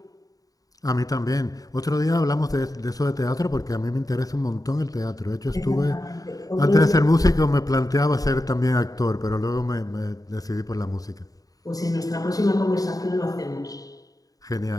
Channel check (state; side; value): late; right; 0.18 ms